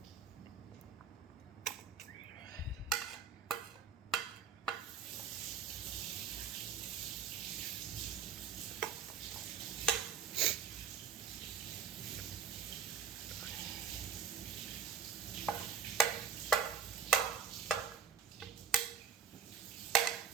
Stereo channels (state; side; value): quieter; left; 6.8 dB